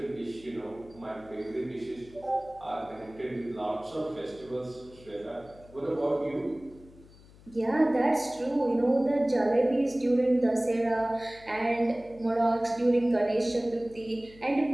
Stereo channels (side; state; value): left; noise; hum, 23 dB below the sound